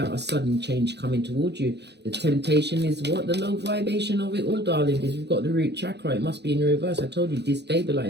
a sudden change coming towards you. The temptation is what? The low vibration of it all, darling dears. We've got the root chakra. It must be in reverse. I told you,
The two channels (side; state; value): left; late; 0.49 ms